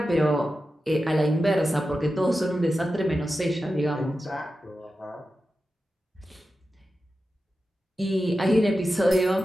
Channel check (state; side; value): normal; both; correlation 0.92